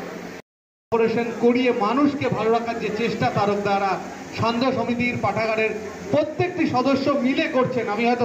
অপারেশন করিয়ে মানুষকে ভালো রাখার যে চেষ্টা তারকদারা সান্ধ্য সমিতির পাঠাগারের প্রত্যেকটি সদস্য মিলে করছেন। আমি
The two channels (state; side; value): identical; both; correlation 1.00